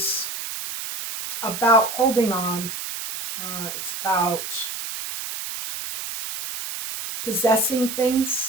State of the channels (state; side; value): noise; right; hiss, 6 dB below the sound